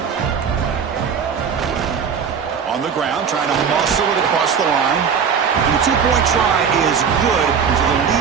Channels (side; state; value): left; quieter; 6.7 dB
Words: On the ground, trying to muscle it across the line. And the two-point try is good, so the